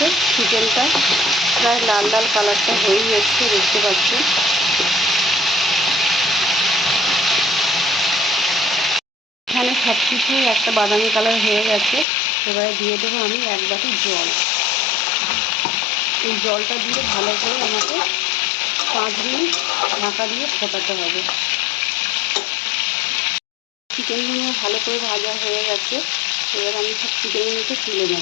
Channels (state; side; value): drops out; right; at 12.1 s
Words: চিকেনটা প্রায় লাল লাল কালারটা হয়েই এসছে, দেখতে পাচ্ছেন। এখানে সব কিছুই একটা বাদামি কালার হয়ে গেছে। এবারে দিয়ে দেবো আমি 1 বাটি জল। এই জলটা দিয়ে ভালো করে আমাকে 5 মিনিট ঢাকা দিয়ে ফোটাতে হবে। চিকেনগুলো ভালো করে ভাজা হয়ে গেছে। এবার আমি সব চিকেনগুলোকে তুলে